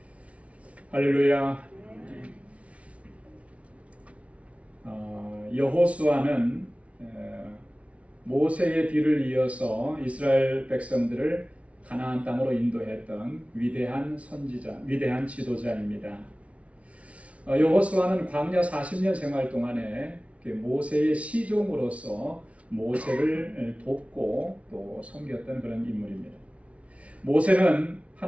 할렐루야. 여호수아는 모세의 뒤를 이어서 이스라엘 백성들을 가나안 땅으로 인도했던 위대한 선지자, 위대한 지도자입니다. 여호수아는 광야 40년 생활 동안에 모세의 시종으로서 모세를 돕고 또 섬겼던 그런 인물입니다. 모세는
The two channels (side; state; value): left; late; 0.064 ms